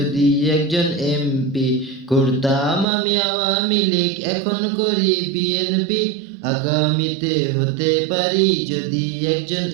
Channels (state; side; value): drops out; left; at 2.9 s